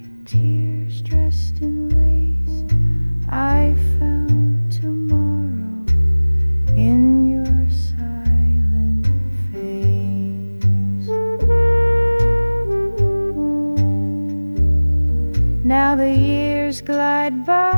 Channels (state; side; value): inverted; both; correlation -1.00